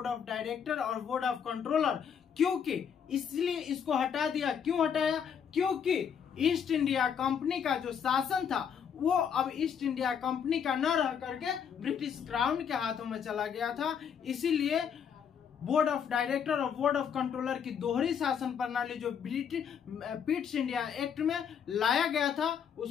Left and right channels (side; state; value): right; quieter; 7.6 dB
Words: ऑफ डायरेक्टर और बोर्ड ऑफ कंट्रोलर, क्योंकि इसलिए इसको हटा दिया। क्यों हटाया? क्योंकि ईस्ट इंडिया कंपनी का जो शासन था वो अब ईस्ट इंडिया कंपनी का न रह करके ब्रिटिश क्राउन के हाथों में चला गया था। इसीलिए बोर्ड ऑफ डायरेक्टर और बोर्ड ऑफ कंट्रोलर की दोहरी शासन प्रणाली जो पिट्स इंडिया एक्ट में लाया गया था,